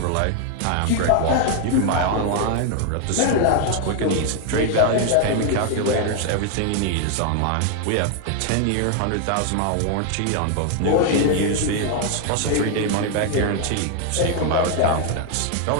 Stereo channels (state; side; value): different; both; correlation 0.00